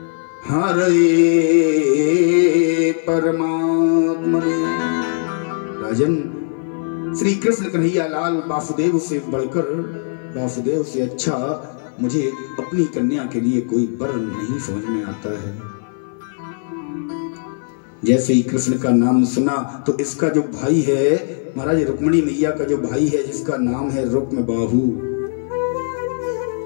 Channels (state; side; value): silent; right; 56 dB below the other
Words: हरे परमात्मने। राजन, श्री कृष्ण कन्हैया लाल वासुदेव से बढ़कर, वासुदेव से अच्छा मुझे अपनी कन्या के लिए कोई वर नहीं समझ में आता है। जैसे ही कृष्ण का नाम सुना तो इसका जो भाई है महाराज, रुक्मिणी मैया का जो भाई है जिसका नाम है रुक्मबाहु,